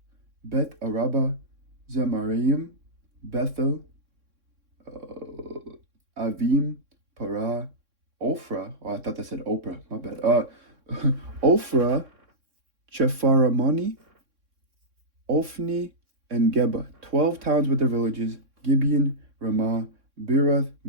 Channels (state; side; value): late; left; 3.6 ms